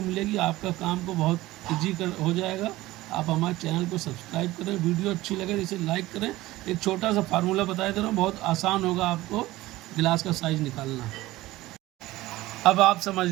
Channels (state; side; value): quieter; left; 17.7 dB